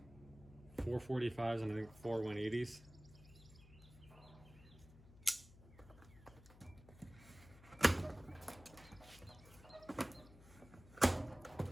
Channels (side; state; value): left; noise; hum, 20 dB below the sound